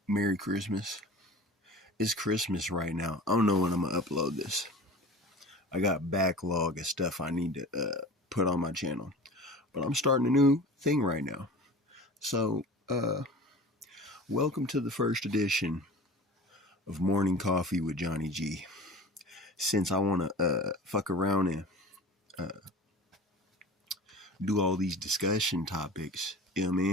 Merry Christmas. It's Christmas right now. I don't know when I'm gonna upload this. I got backlog of stuff I need to put on my channel, but I'm starting a new thing right now. So, welcome to the first edition of Morning Coffee with Johnny G. Since I want to fuck around and do all these discussion topics, you know what I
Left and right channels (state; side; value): normal; both; correlation 0.38